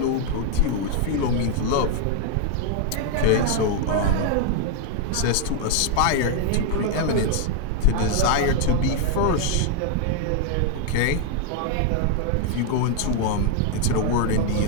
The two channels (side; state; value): both; different; correlation 0.00